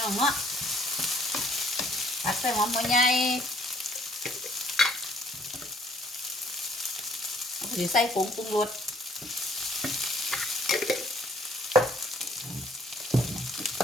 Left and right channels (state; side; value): normal; both; correlation 0.60